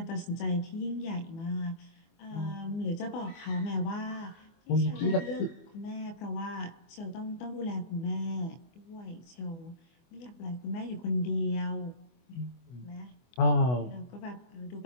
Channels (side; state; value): right; late; 24 ms